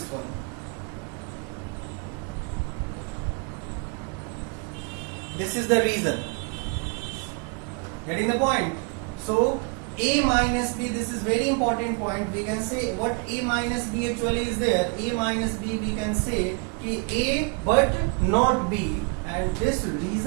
one. This is the reason. Getting the point? So A minus B, this is very important point. We can say what A minus B actually is there. A minus B we can say A but not B, and this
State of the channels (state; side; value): quieter; left; 35.2 dB